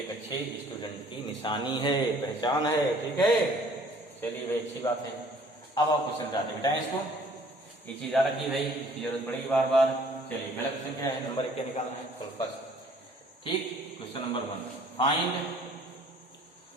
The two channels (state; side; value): normal; both; correlation 0.56